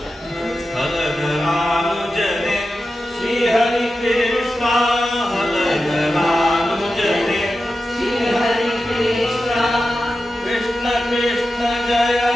ಫಲಧರಾನುಜನೆ ಶ್ರೀಹರಿ ಕೃಷ್ಣ, ಫಲಧರಾನುಜನೆ ಶ್ರೀಹರಿ ಕೃಷ್ಣ, ಕೃಷ್ಣ ಕೃಷ್ಣ ಜಯ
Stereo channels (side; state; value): both; normal; correlation 0.92